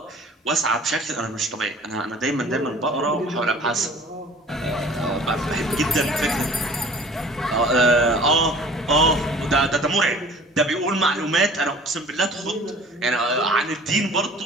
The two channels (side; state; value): both; normal; correlation 0.48